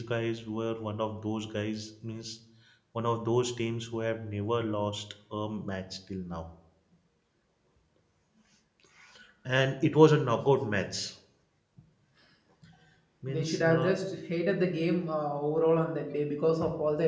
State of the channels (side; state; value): both; identical; correlation 1.00